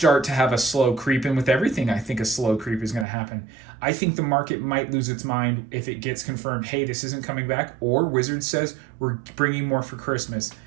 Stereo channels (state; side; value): drops out; left; at 3.1 s